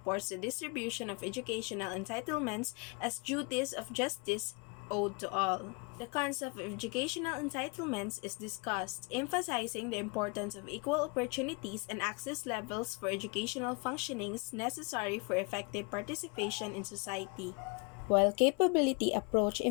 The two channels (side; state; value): right; quieter; 31.7 dB